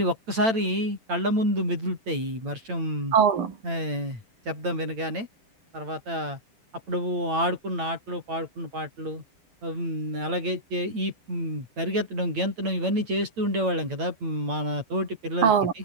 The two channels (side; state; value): left; late; 8.9 ms